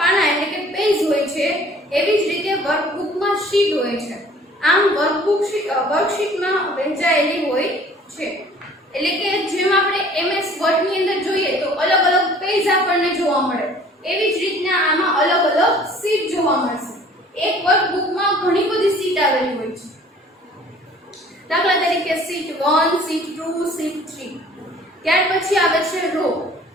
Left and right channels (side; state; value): both; normal; correlation 0.52